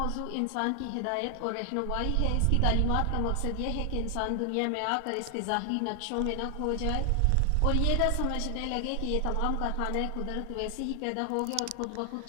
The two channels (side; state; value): both; different; correlation 0.00